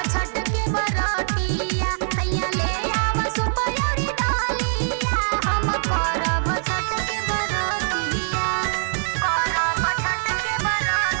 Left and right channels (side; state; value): left; silent; digital silence